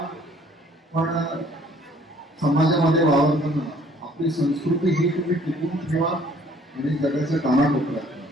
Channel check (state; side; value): normal; both; correlation 0.58